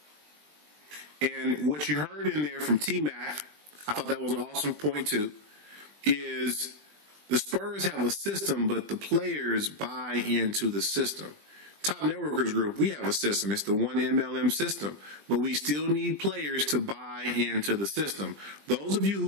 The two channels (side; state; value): left; late; 20 ms